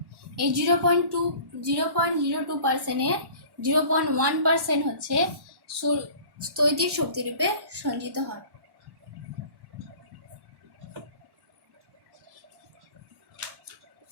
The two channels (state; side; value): late; left; 1.1 ms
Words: এই 0.02%-এর 0.1% হচ্ছে স্থৈতিক শক্তিরূপে সঞ্চিত হয়।